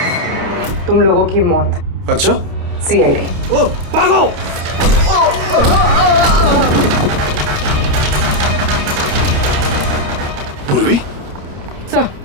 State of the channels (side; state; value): left; late; 29 ms